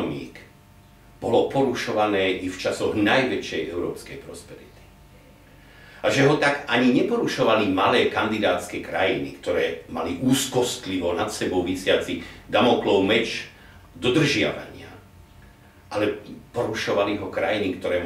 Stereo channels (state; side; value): identical; both; correlation 1.00